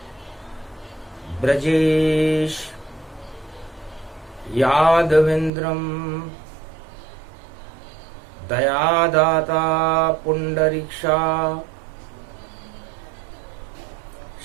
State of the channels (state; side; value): drops out; left; at 5.5 s